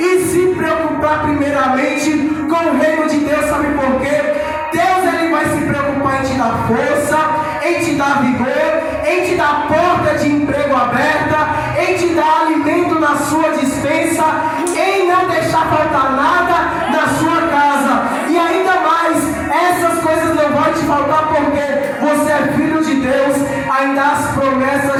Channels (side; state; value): both; identical; correlation 1.00